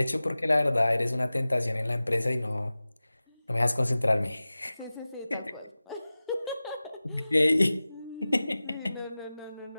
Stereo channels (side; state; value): both; inverted; correlation -0.97